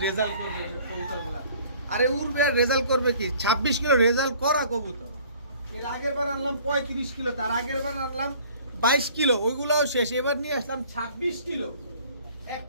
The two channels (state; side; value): inverted; both; correlation -0.53